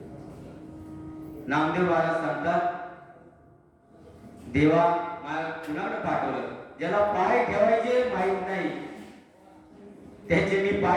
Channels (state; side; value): identical; both; correlation 1.00